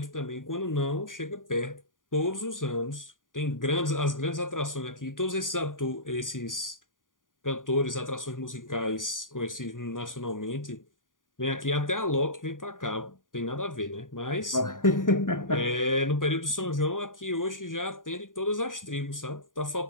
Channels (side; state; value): right; late; 0.89 ms